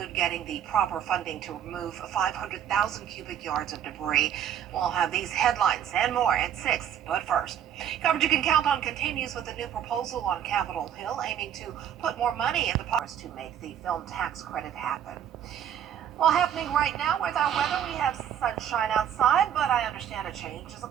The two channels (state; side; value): quieter; left; 9.7 dB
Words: getting the proper funding to remove 500,000 cubic yards of debris. We'll have these headlines and more at 6, but first, coverage you can count on continues with a new proposal on Capitol Hill aiming to put more money in the pockets to make the film tax credit happen. Well, happening right now with our weather, we have sunshine outside, but I understand a change is